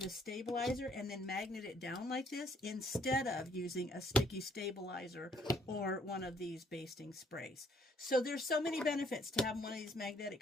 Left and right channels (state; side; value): normal; both; correlation 0.65